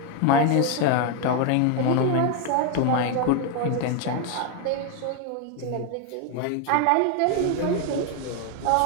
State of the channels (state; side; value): different; both; correlation 0.01